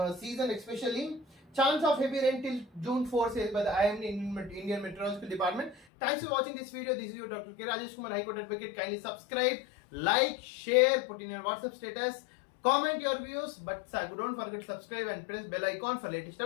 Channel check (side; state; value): right; drops out; at 5.9 s